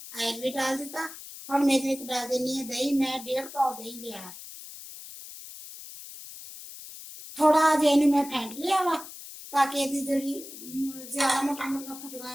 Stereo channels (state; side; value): noise; left; hiss, 14 dB below the sound